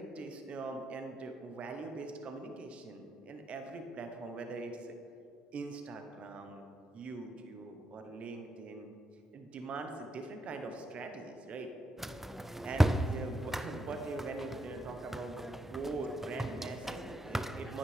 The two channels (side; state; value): both; normal; correlation 0.81